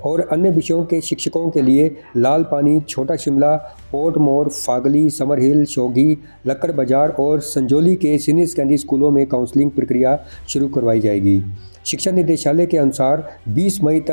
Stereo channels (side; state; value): both; inverted; correlation -1.00